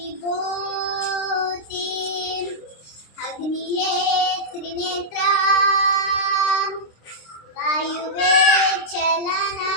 ಅಗ್ನಿಯೇ ತ್ರಿನೇತ್ರ, ವಾಯುವೇ ಚಲನ,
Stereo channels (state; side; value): late; right; 26 ms